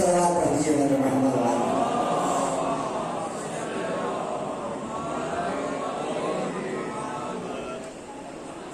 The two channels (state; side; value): identical; both; correlation 1.00